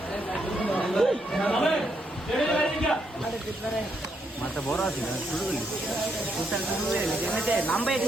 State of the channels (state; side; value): normal; both; correlation 0.77